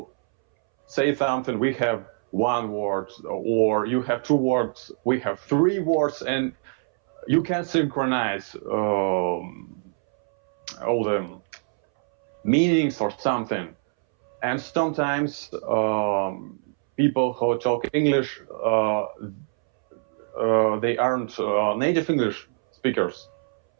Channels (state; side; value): silent; left; 62 dB below the other